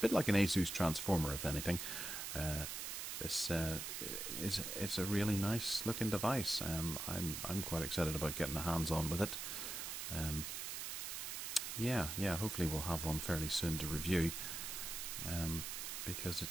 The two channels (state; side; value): noise; right; hiss, 4 dB below the sound